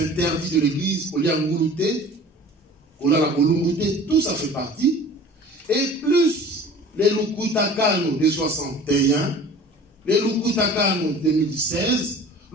de l'Église, tout ça fait partie. Et plus les Lukutakano de 61, les Lukutakano 2016,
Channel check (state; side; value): normal; both; correlation 0.44